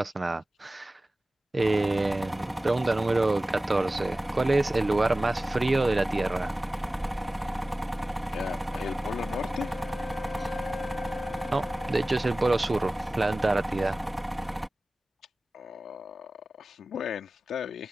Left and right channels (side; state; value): both; normal; correlation 0.97